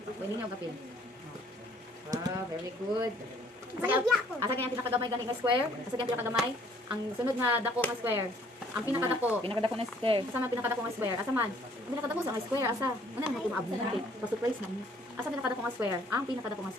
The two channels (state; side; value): normal; both; correlation 0.61